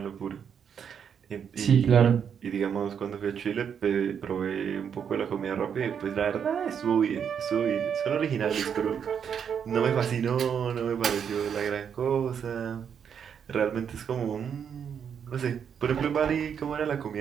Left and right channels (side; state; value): left; quieter; 7.7 dB